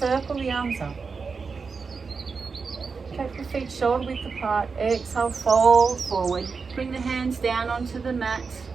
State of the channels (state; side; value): quieter; left; 5.0 dB